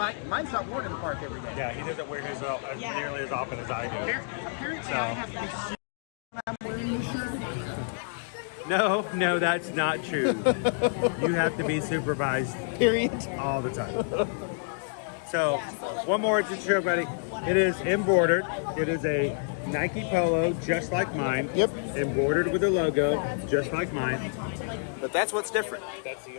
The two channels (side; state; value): right; silent; digital silence